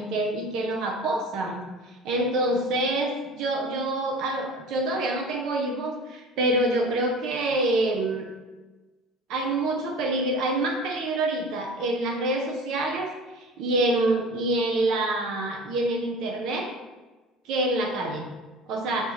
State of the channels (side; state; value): both; normal; correlation 0.37